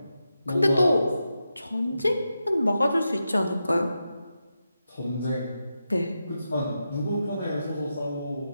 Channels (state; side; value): inverted; both; correlation -0.88